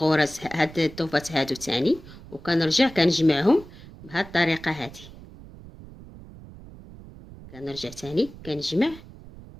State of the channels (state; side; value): noise; right; rumble, 18 dB below the sound